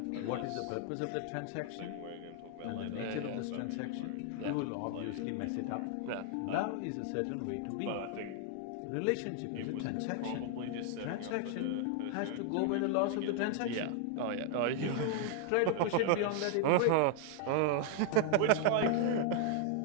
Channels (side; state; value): both; different; correlation 0.00